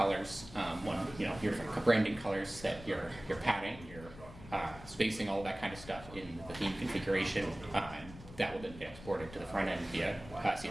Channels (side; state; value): left; noise; rumble, 16 dB below the sound